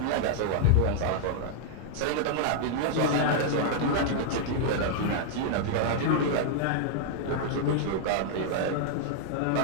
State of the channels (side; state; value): both; different; correlation -0.01